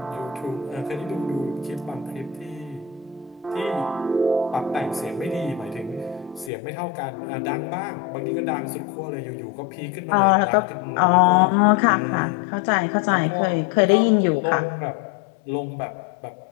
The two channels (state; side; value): drops out; right; at 6.5 s